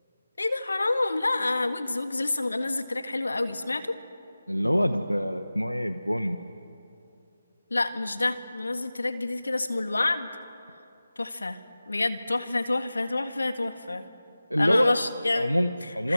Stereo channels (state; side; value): inverted; both; correlation -0.97